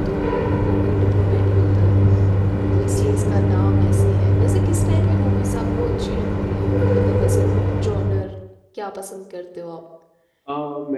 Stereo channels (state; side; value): identical; both; correlation 1.00